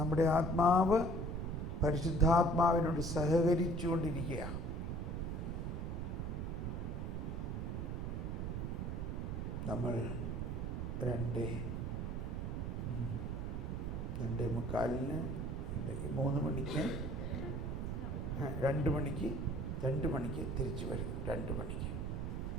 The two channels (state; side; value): noise; right; rumble, 2 dB below the sound